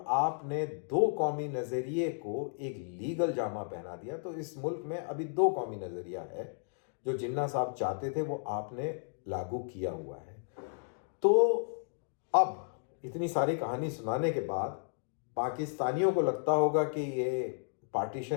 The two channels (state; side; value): silent; right; digital silence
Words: आपने दो कौमी नजरिए को एक लीगल जामा पहना दिया। तो इस मुल्क में अभी दो कौमी नजरिया है, जो जिन्ना साहब चाहते थे वो आपने लागू किया हुआ है। तो अब इतनी सारी कहानी सुनाने के बाद पाकिस्तानियों को लगता होगा कि ये